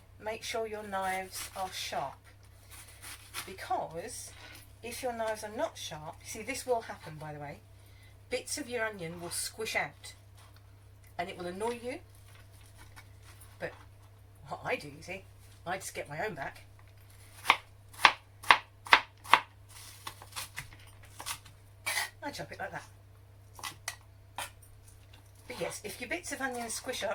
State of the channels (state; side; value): identical; both; correlation 1.00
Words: make sure your knives are sharp, because if your knives are not sharp, see, this will happen, by the way, bits of your onion will squish out and it will annoy you. But what I do, you see, I just get my own back. I chop it like that. But yes, if your bits of onion squish